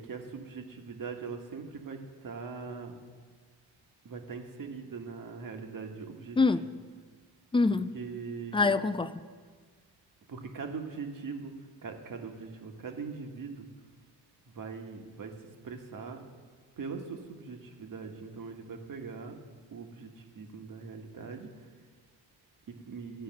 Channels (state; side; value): normal; both; correlation 0.51